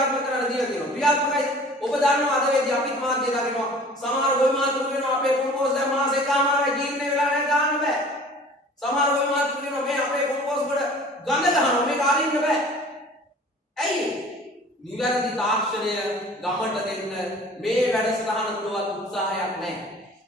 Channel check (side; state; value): both; normal; correlation 0.46